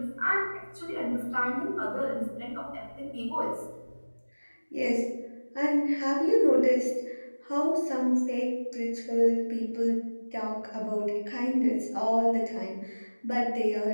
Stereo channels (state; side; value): inverted; both; correlation -1.00